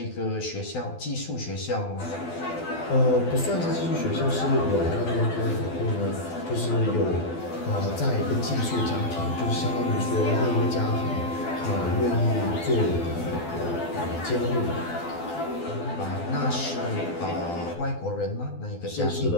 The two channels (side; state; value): right; late; 12 ms